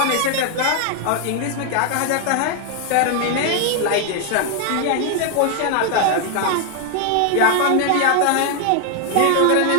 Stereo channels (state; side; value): different; both; correlation 0.00